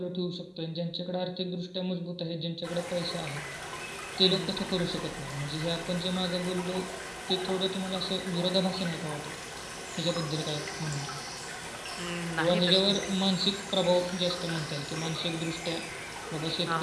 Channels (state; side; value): identical; both; correlation 1.00